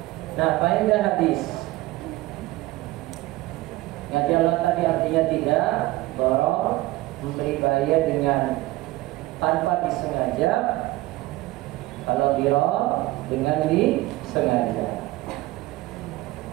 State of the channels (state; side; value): quieter; left; 18.8 dB